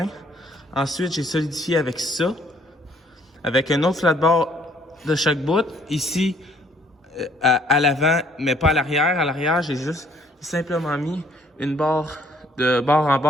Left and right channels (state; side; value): normal; both; correlation 0.62